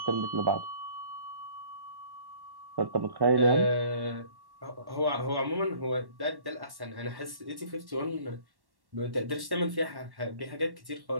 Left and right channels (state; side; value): late; left; 1.1 ms